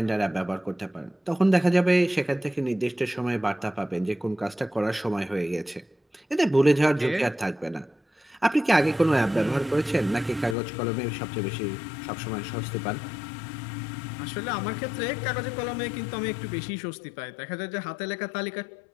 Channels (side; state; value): right; drops out; at 10.6 s